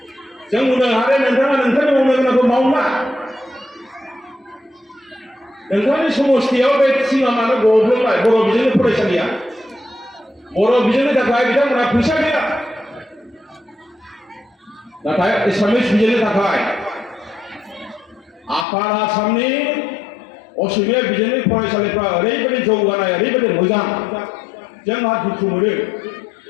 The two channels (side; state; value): right; drops out; at 18.7 s